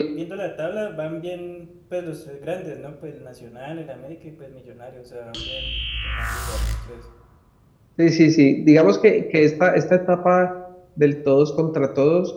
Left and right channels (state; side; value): identical; both; correlation 1.00